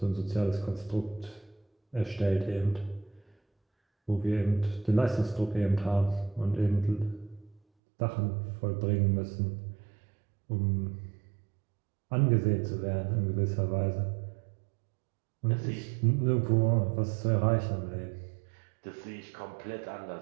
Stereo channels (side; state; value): left; drops out; at 7.6 s